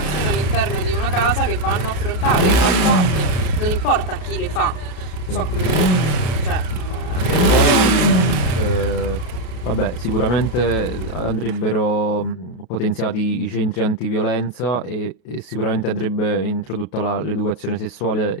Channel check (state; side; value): late; right; 33 ms